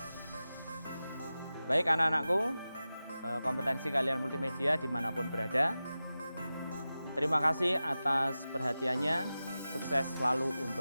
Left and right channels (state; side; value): inverted; both; correlation -0.94